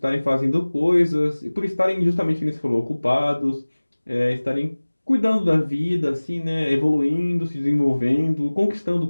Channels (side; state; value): both; inverted; correlation -1.00